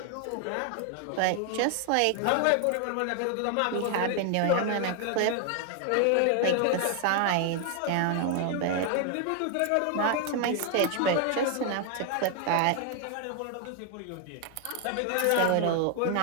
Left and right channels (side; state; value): both; different; correlation 0.00